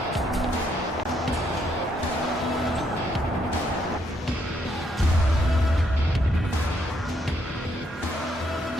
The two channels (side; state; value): both; normal; correlation 0.74